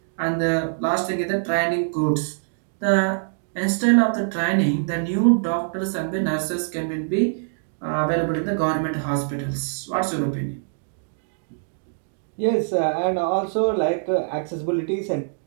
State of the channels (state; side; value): silent; left; digital silence